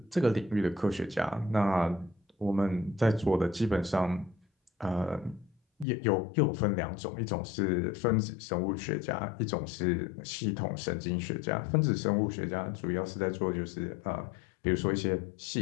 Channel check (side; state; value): right; drops out; at 5.9 s